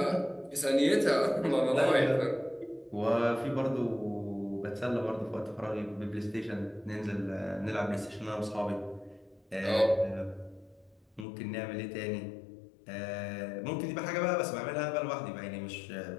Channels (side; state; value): right; drops out; at 11.2 s